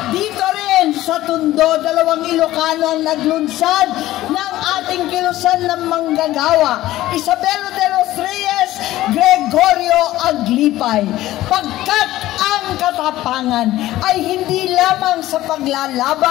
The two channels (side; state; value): right; quieter; 15.5 dB